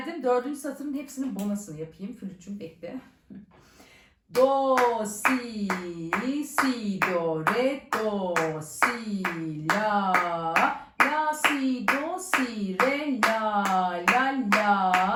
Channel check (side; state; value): both; identical; correlation 1.00